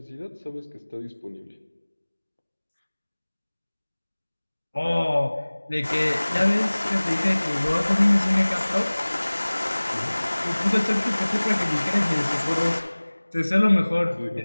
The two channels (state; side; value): inverted; both; correlation -1.00